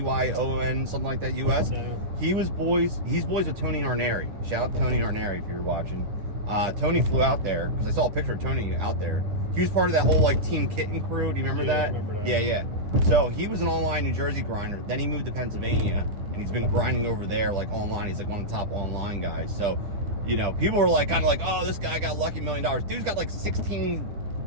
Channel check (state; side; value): late; left; 10 ms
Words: something like that, US? No. He's boys with Tony Arneri. Shout out to Tony Arneri if you're watching. Tony flew out there, because I saw a picture of Tony out there. He was part of that whole, like, Team Kitten crew. Do you remember that? I remember that. Yeah. So he was an online New Jersey grinder. Then he moved to Pennsylvania, and he's been grinding over there, like, online. He's like one of the top online guys. So, people were like, kind of like, oh, this guy got lucky $1 million. Dude's got like 16